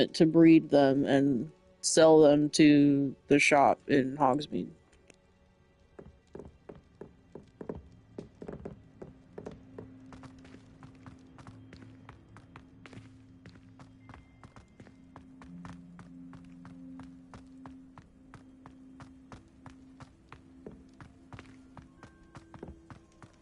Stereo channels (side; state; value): both; identical; correlation 1.00